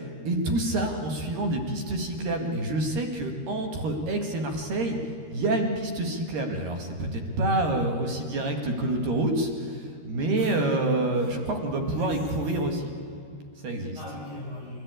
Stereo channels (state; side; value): late; left; 13 ms